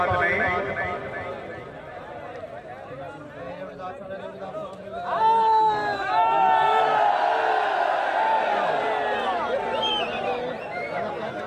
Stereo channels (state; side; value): identical; both; correlation 1.00